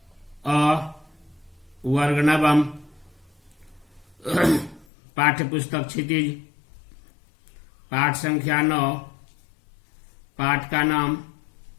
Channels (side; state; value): right; drops out; at 4.9 s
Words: वर्ग नवम। पाठ्य पुस्तक क्षितिज। पाठ संख्या 9। पाठ का नाम